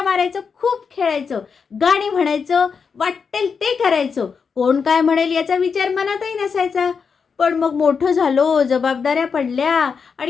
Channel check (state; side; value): quieter; right; 5.8 dB